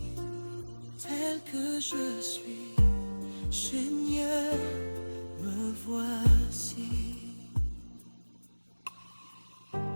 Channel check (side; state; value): both; inverted; correlation -1.00